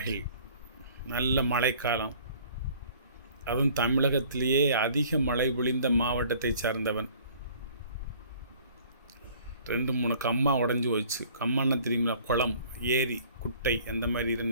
நல்ல மழைக்காலம், அதுவும் தமிழகத்திலேயே அதிக மழை பொழிந்த மாவட்டத்தை சார்ந்தவன். 2-3 கம்மா உடஞ்சி போச்சு. கம்மான்னா தெரியுங்களா? குளம், ஏரி, குட்டை அந்த மாதிரி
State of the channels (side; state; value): both; inverted; correlation -0.53